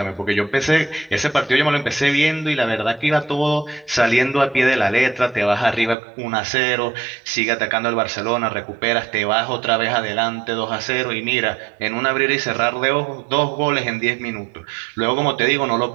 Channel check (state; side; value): drops out; left; at 6.0 s